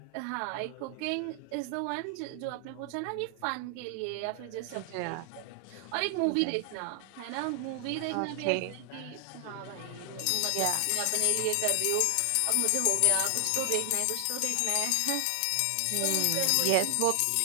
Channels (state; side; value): different; both; correlation 0.00